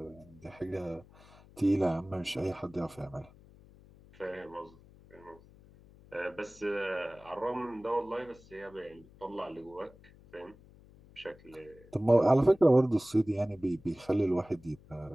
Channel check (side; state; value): left; noise; hum, 24 dB below the sound